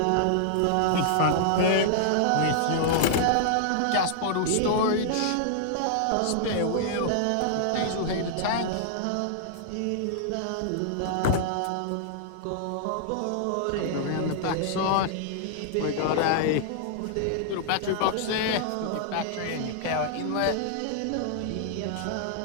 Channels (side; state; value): both; different; correlation -0.01